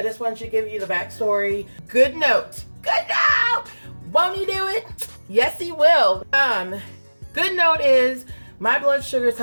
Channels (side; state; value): both; inverted; correlation -1.00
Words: just wanted to give you the backstory. Good note. Good note! Won't he do it? Yes, he will. Good note is my blood sugars